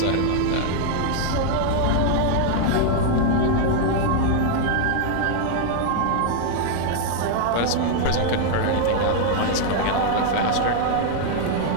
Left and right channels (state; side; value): different; both; correlation 0.00